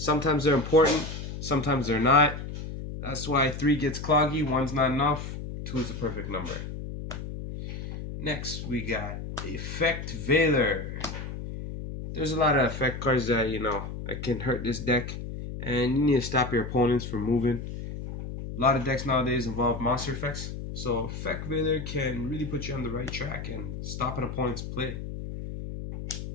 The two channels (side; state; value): left; noise; hum, 7 dB below the sound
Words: they're important, sometimes they're not. That's why 3 gets cloggy, 1's not enough, 2 is the perfect number. Next, we got Effect Veiler. There's a lot of effect cards that, that can hurt this deck, and you need to stop your opponents from moving. A lot of decks nowadays involve monster effects, so Effect Veiler can really put you on the right track and stop an opponent's play.